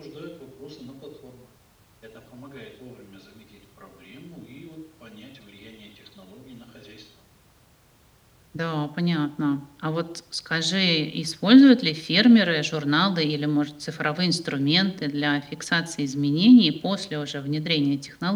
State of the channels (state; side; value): identical; both; correlation 1.00